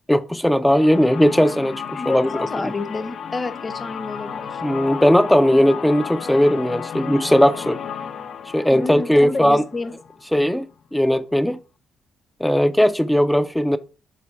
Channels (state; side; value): normal; both; correlation 0.98